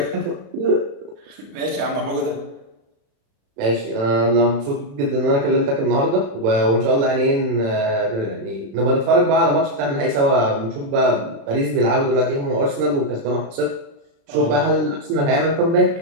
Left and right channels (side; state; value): left; late; 36 ms